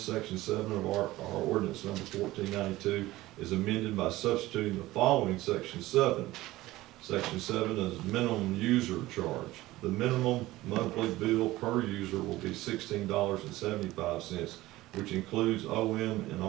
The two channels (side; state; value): left; quieter; 17.6 dB